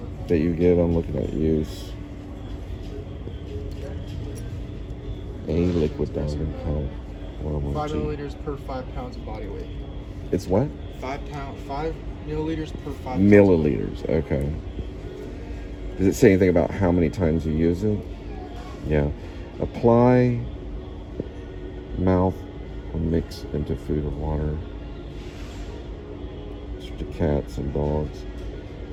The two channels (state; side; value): identical; both; correlation 1.00